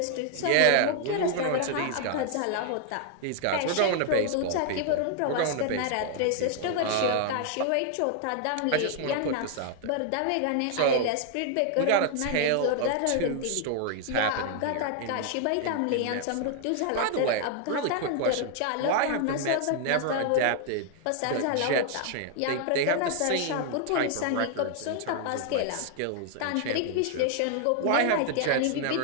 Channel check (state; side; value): different; both; correlation 0.00